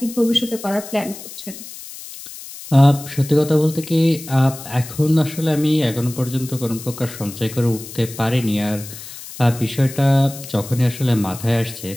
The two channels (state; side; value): noise; left; hiss, 14 dB below the sound